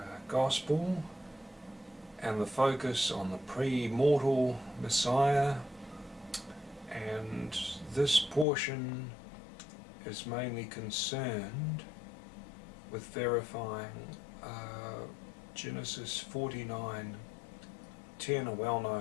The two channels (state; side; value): drops out; right; at 8.5 s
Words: Gospel and the focus on the pre-mortal Messiah, and this portion is mainly concerned with verifying Genesis 49:10, a